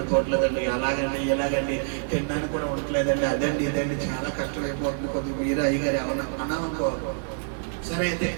ఎలాగండి తినడానికి కూడా ఉండట్లేదండి, అదండి ఇదండి చాలా కష్టమైపోతుంది, కొద్దిగా మీరు అయ్యగారు ఎవరన్నా అన్నామనుకో, సరే అయితే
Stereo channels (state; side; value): silent; left; digital silence